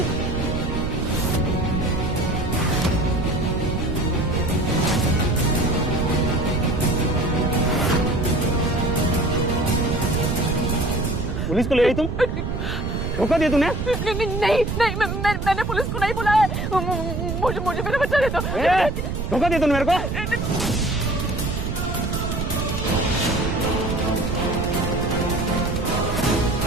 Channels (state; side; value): noise; right; rumble, 3 dB below the sound